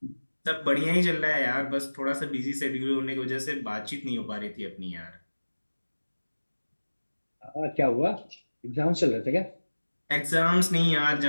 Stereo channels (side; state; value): both; inverted; correlation -1.00